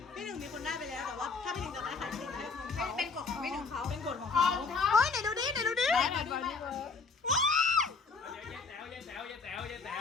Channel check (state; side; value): quieter; right; 4.5 dB